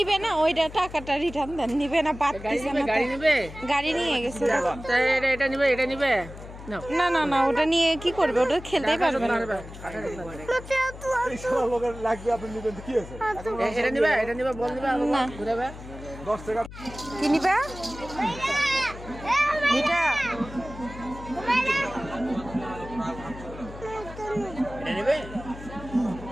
না, ওইটা টাকাটা রিটার্ন দেন। নিবে না, পারতেছে না। গাড়ি নেবে? গাড়ি নিয়ে গেছে। এটা নিবে, এটা নিবে নাও। না না না, ওটা নিয়ে কি করবে? ওটা খেলতেই পারবে না। এটা নিবে, এটা নিবে, বল নিবে, না। ঘুরাবে 10 টাকা। কি নিবা? এটা এটা নিবে।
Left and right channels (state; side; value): noise; left; hum, 14 dB below the sound